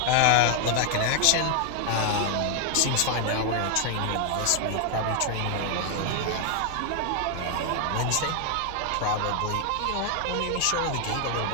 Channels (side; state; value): both; different; correlation 0.00